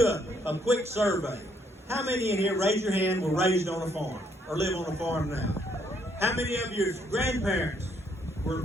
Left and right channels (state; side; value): normal; both; correlation 0.70